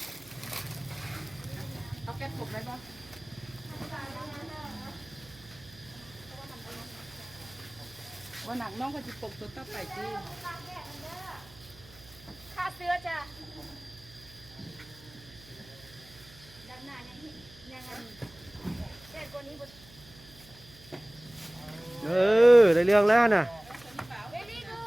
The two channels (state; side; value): noise; right; hum, 22 dB below the sound